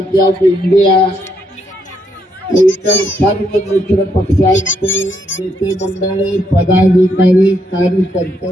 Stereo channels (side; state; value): both; normal; correlation 0.76